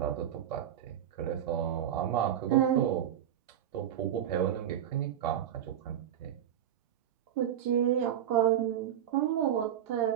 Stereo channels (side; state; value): left; quieter; 10.4 dB